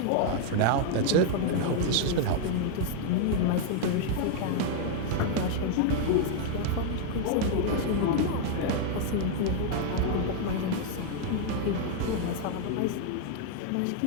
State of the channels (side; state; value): both; different; correlation 0.00